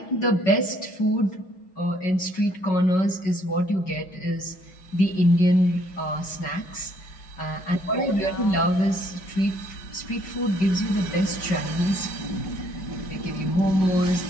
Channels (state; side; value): late; right; 5.4 ms